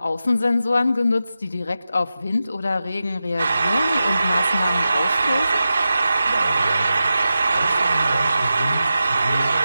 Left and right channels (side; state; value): both; inverted; correlation -0.92